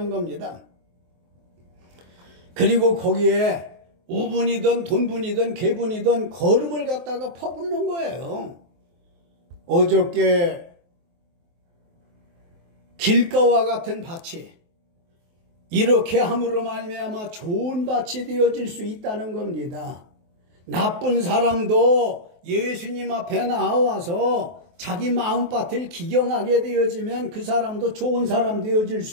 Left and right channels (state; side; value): late; left; 23 ms